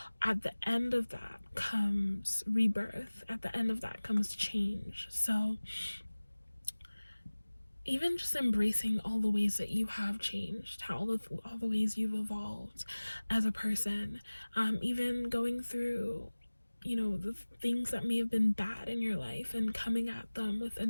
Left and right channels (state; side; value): inverted; both; correlation -1.00